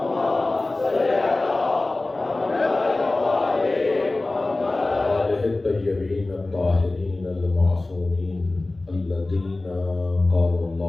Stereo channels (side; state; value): right; quieter; 3.0 dB